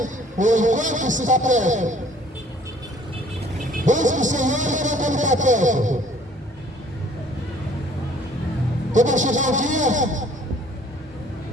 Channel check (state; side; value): normal; both; correlation 0.56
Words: enquanto está perto. Busque o Senhor enquanto Ele está perto. Quando vai chegar o dia,